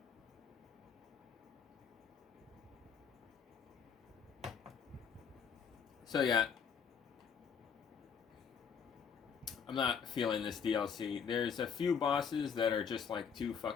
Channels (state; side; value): quieter; right; 6.8 dB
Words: So yeah, I'm not feeling this DLC. There's a few bosses that are just like too